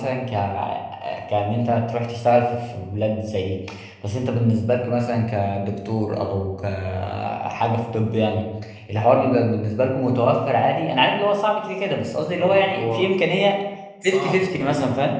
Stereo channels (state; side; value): identical; both; correlation 1.00